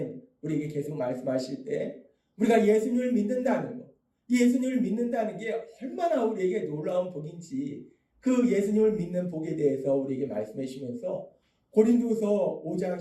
우리에게 계속 말씀하실 때 우리가 예수님을 믿는다는 것, 예수님을 믿는다는 게 얼마나 우리에게 놀라운 복인지 그 예수님을 믿는 복에 대해서 우리에게 말씀해 주시면서 고린도서 5장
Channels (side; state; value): both; identical; correlation 1.00